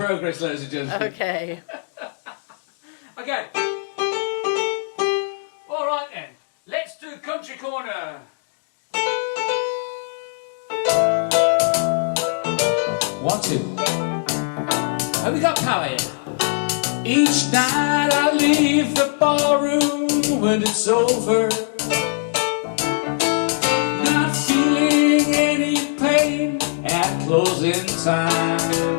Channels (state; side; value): silent; right; digital silence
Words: ladies and gentlemen. Okay. Okay. All right then. Let's do country corner. to. Have we got power here? Each night I leave the ballroom when it's over, not feeling any pain at closing